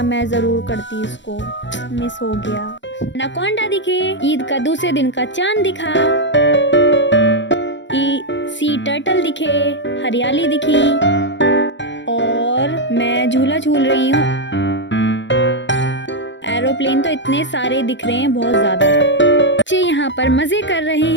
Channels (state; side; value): late; right; 0.53 ms